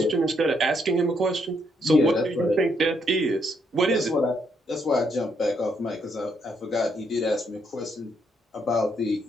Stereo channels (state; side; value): normal; both; correlation 0.74